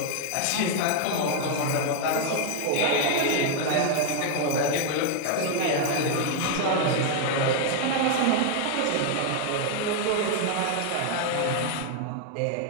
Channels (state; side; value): different; both; correlation 0.00